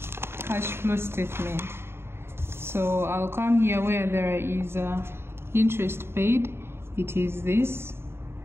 cash flow statement. So I'll come here where there is interest paid, it is this.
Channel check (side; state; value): left; late; 0.12 ms